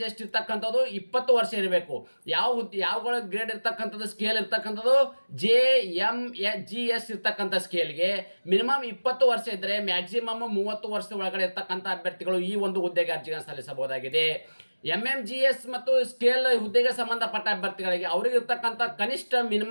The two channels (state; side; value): inverted; both; correlation -1.00